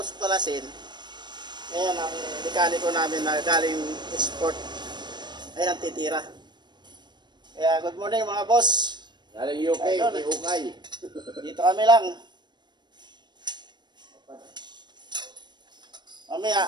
ko kalasin, ngayon ang mekaniko namin na galing export, ayan ang titira. Kaya good morning mga boss. Galing UK, Idol. UK. Dito kami lang. Mamaya,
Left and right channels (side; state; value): left; late; 0.21 ms